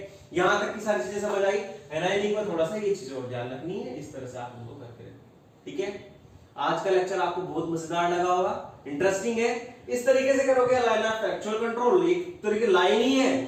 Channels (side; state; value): both; identical; correlation 1.00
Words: यहां तक की सारी चीजें समझ आई। एनायनिक में थोड़ा सा ये चीज और ध्यान रखनी है, इस तरह से आप उनको करके रखें, ठीक है। आज का लेक्चर आपको बहुत मजेदार लगा होगा, इंटरेस्टिंग है। इस तरीके से करोगे लाइन ऑफ एक्चुअल कंट्रोल, एक तरीके लाइन ही है